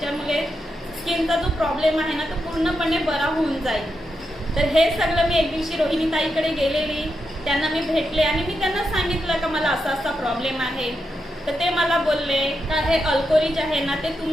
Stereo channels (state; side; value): normal; both; correlation 0.85